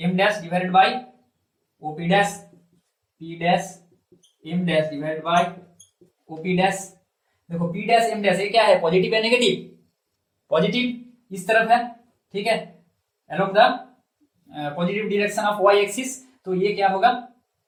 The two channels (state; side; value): identical; both; correlation 1.00